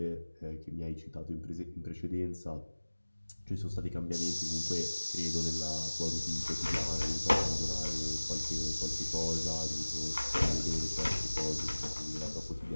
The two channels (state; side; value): inverted; both; correlation -1.00